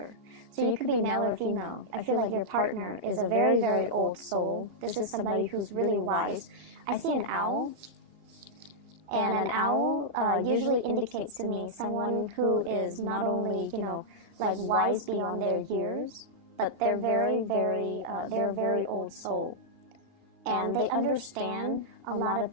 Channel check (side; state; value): left; late; 2.8 ms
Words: So you could be male or female. I feel like your partner is a very, very old soul. This is somebody who's really wise. I see an owl. And an owl usually indicates to me someone who is not only, wise beyond their years, but they're they're a very old soul. And they understand a lot of